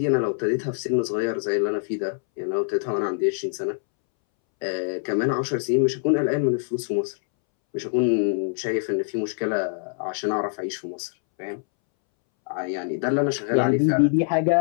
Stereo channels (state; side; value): silent; right; 62 dB below the other